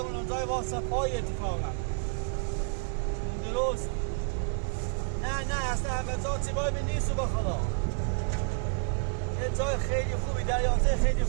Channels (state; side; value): silent; left; 58 dB below the other